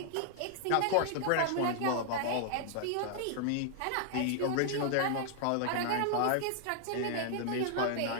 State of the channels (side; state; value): both; different; correlation 0.00